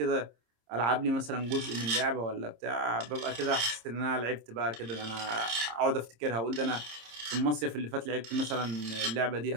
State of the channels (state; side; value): late; left; 26 ms